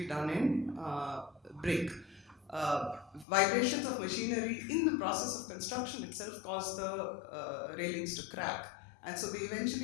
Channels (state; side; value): drops out; right; at 3.2 s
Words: done in brick. Vibrations of machinery in the process of construction itself caused the railings to crack, and so they